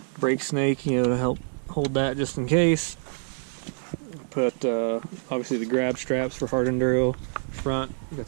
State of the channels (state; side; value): silent; left; 61 dB below the other